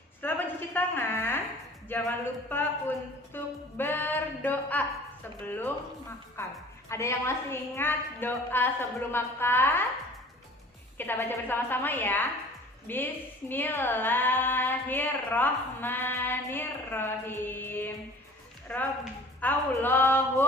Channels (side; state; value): both; normal; correlation 0.47